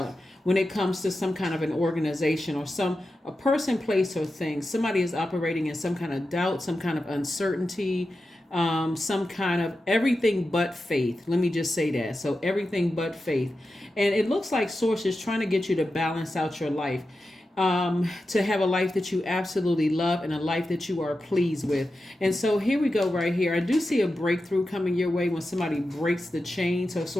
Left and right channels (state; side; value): normal; both; correlation 0.91